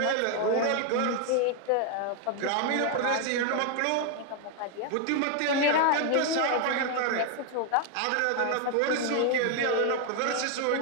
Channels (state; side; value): different; both; correlation 0.01